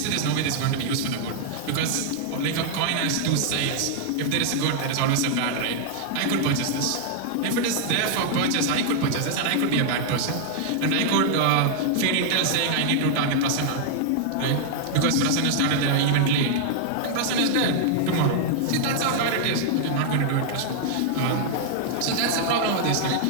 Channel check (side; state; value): both; different; correlation -0.01